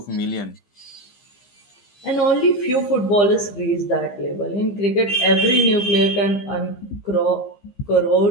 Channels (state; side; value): late; right; 15 ms